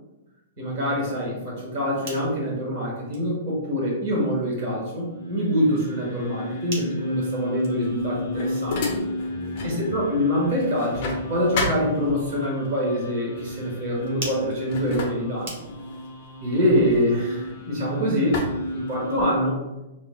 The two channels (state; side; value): inverted; both; correlation -0.38